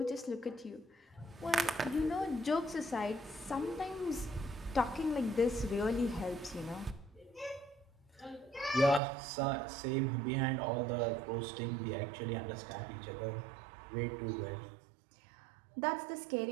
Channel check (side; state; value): left; drops out; at 9.0 s